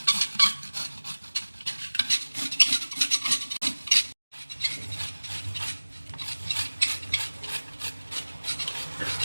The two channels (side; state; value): both; inverted; correlation -1.00